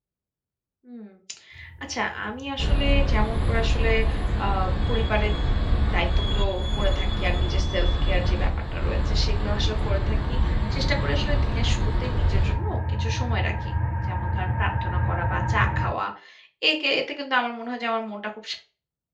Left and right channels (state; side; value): identical; both; correlation 1.00